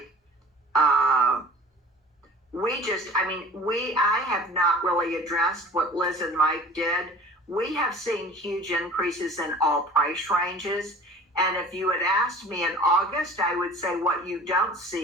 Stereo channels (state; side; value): normal; both; correlation 0.44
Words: I have not really addressed what Liz and Mike did. We have seen huge increases in all price ranges. And if you had asked me in August, I would say what you don't